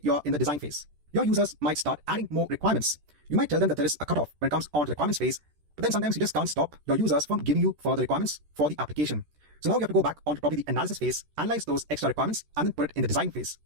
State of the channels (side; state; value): left; late; 13 ms